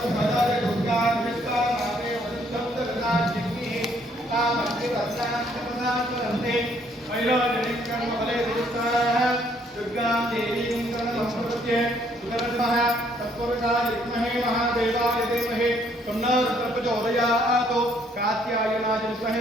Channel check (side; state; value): both; normal; correlation 0.66